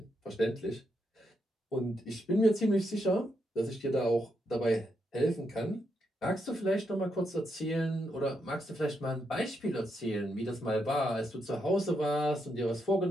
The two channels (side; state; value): both; normal; correlation 0.81